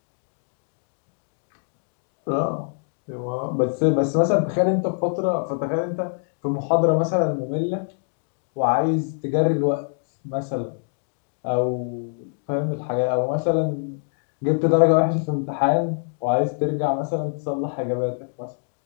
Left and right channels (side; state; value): right; silent; digital silence